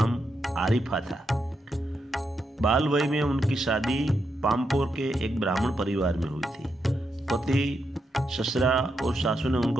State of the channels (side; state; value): both; normal; correlation 0.83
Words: आरिफा था। बाल वय में उनकी शादी पामपोर के एक ब्राह्मण परिवार में हुई थी। पति, ससुरा और सासू ने